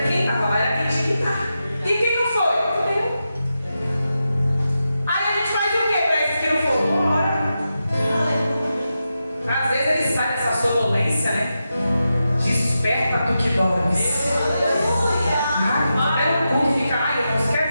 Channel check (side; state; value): both; inverted; correlation -0.89